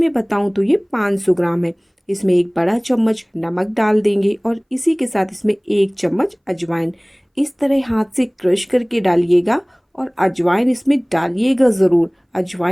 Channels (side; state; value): both; identical; correlation 1.00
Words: बताऊं तो ये 500 ग्राम है। इसमें एक बड़ा चम्मच नमक डाल देंगे और इसी के साथ इसमें 1 चम्मच अजवाइन इस तरह हाथ से क्रश करके डालिएगा और अजवाइन इसमें डालिएगा ज़रूर।